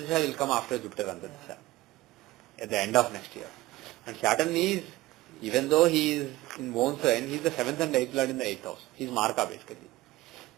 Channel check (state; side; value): quieter; left; 18.6 dB